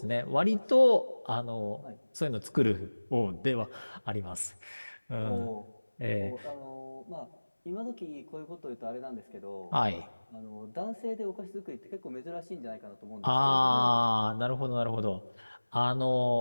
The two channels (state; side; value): inverted; both; correlation -1.00